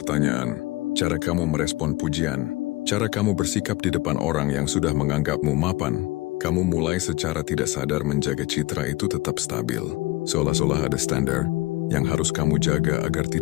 cara kamu merespon pujian, cara kamu bersikap di depan orang yang sudah menganggapmu mapan. Kamu mulai secara tidak sadar menjaga citra itu tetap stabil. Seolah-olah ada standar yang harus kamu jaga agar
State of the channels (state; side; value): quieter; right; 19.6 dB